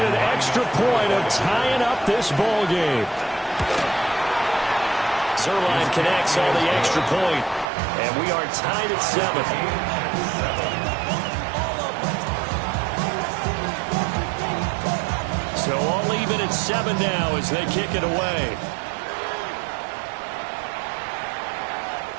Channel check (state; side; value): drops out; left; at 7.7 s